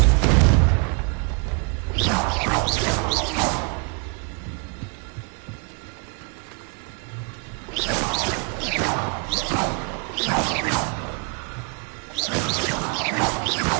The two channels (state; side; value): quieter; left; 36.7 dB